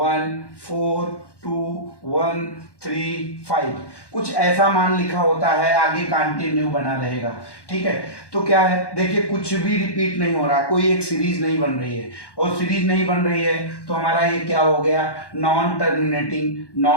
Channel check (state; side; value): late; right; 1.1 ms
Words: कुछ ऐसा मान लिखा होता है, आगे कंटिन्यू बना रहेगा। ठीक है, तो क्या है, देखिए कुछ भी रिपीट नहीं हो रहा, कोई एक सीरीज नहीं बन रही है, और सीरीज नहीं बन रही है तो हमारा ये क्या हो गया, नॉन टर्मिनेटिंग